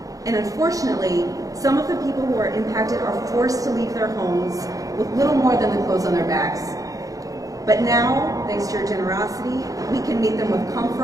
And unfortunately, some of the people who are impacted are forced to leave their homes with little more than the clothes on their backs. But now, thanks to your generosity, we can meet them with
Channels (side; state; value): left; late; 0.17 ms